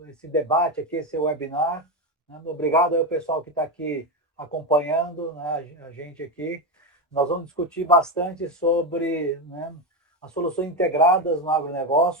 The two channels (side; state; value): both; normal; correlation 0.12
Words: debate aqui, esse webinar. Obrigado ao pessoal que está aqui acompanhando a gente aqui. Nós vamos discutir bastante sobre as soluções integradas no